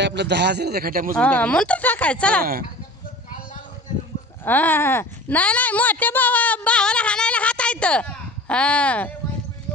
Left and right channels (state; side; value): normal; both; correlation 0.39